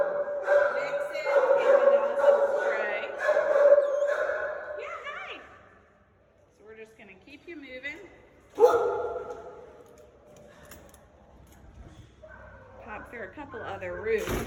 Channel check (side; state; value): both; identical; correlation 1.00